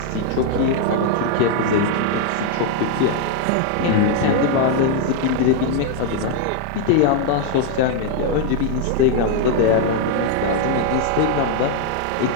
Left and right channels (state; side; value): different; both; correlation 0.00